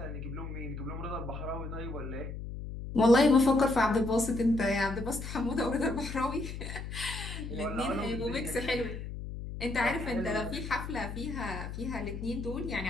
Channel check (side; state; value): left; noise; hum, 7 dB below the sound